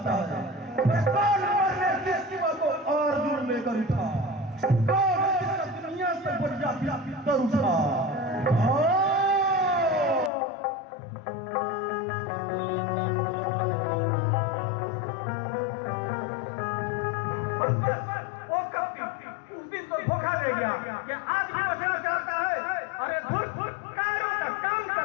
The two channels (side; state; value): right; drops out; at 10.3 s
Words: है। कौन मरने के सिवा को अर्जुन लेकर उठा, कौन इसका दुनिया से बढ़िया कर उठा। उस दिन को धोखा दे गया कि आज भी बचना चाहता है। अरे धुर कायरों का काम